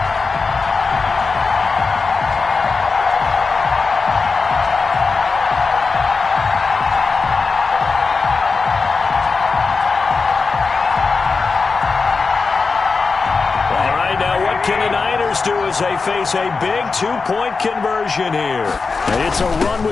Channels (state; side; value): quieter; right; 4.5 dB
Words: Can the Niners do as they face a big 2-point conversion here? It's a run